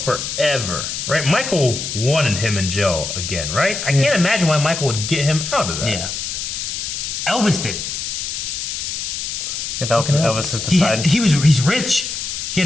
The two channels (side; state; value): left; noise; hiss, 4 dB below the sound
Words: right? Michael wanted him in jail again, right? I can't imagine why Michael would get him out of that. yeah. Elvis did. If Elvis is beside. He's rich. He